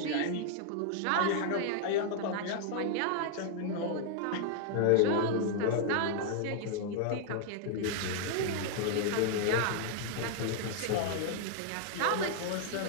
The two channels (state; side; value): different; both; correlation 0.00